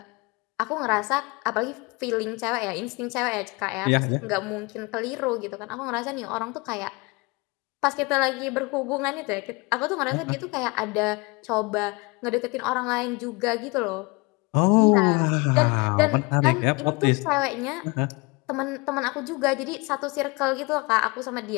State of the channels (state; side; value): quieter; right; 26.7 dB